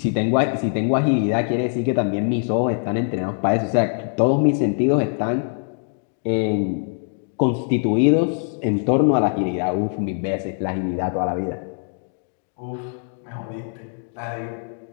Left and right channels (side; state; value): right; silent; 61 dB below the other